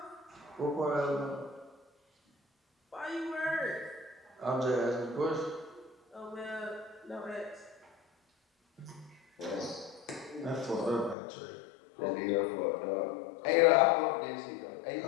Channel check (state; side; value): drops out; right; at 11.2 s